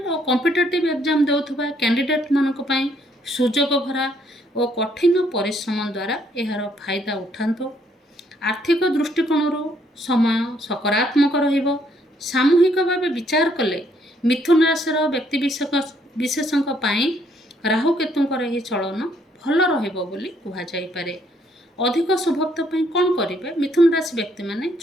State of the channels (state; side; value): normal; both; correlation 0.69